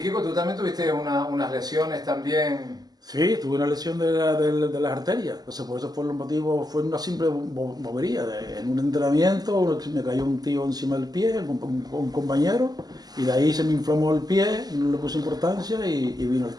tú también tuviste unas lesiones también. Sí, tuve una lesión de las arterias, entonces por eso fue el motivo, fue una simple bobería. En un entrenamiento me cayó un tío encima del pie, un compañero, y de ahí se me inflamó el pie, no le puse importancia y vino el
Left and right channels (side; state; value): left; late; 0.19 ms